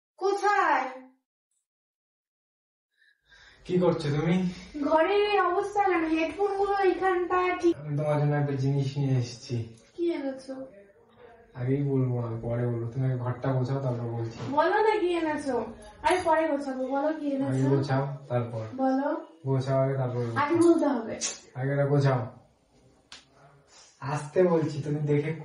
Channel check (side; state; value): both; identical; correlation 1.00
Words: কোথায়? কি করছো তুমি? ঘরের এই অবস্থা কেন? হেডফোন গুলো এখানটা ঠিক। আমি তোমার জন্য একটা জিনিস নিয়ে এসেছি। কি এনেছো? আগেই বলবো না, পরে বলবো। তুমি আগে ঘরটা গোছাও, তারপর বলছি। বলো না কি এনেছো। আরে পরে গোছাবো, বলো কি আগে এনেছো। গোছাও তারপর বলো, গোছাও, আগে তারপর আগে বলতে হবে। আগে গোছাও। আসতে বলছি, তুমি দেখে